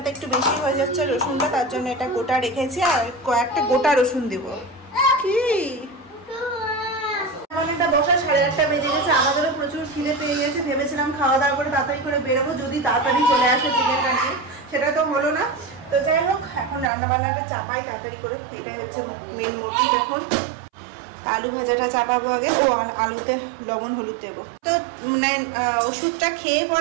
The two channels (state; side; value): drops out; left; at 16.9 s